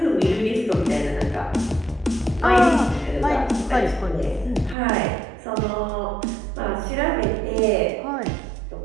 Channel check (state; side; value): drops out; left; at 4.8 s